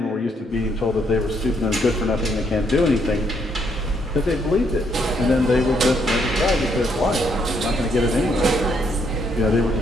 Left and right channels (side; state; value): both; normal; correlation 0.73